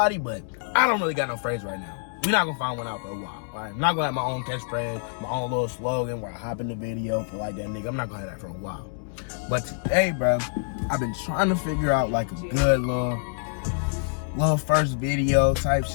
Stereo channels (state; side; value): silent; right; digital silence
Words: but I don't really got no phrase right now. We're not gonna find one out for a while. Alright, I'm not gonna have my own catchphrase, my own little slogan where I hop in the video for like that nigga. I'm not gonna have that for a while. But today, bro, I've been trying to figure out like a good little first video type